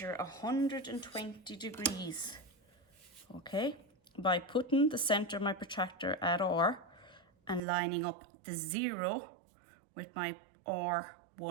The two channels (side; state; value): left; drops out; at 7.6 s